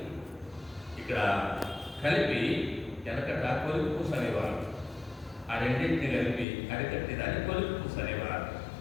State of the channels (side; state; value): right; drops out; at 6.5 s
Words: ఇక్కడ కలిపి వెనకట కొలికి పూస అనేవారు. ఆ రెండింటిని కలిపి అరికట్టి దాన్ని కొలికి పూస అనేవారు.